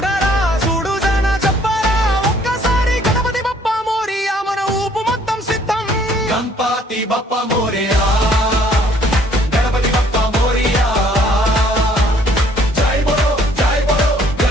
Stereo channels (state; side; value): normal; both; correlation 0.61